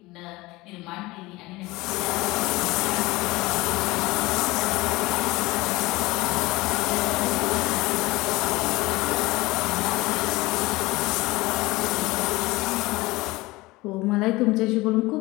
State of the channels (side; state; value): right; quieter; 20.9 dB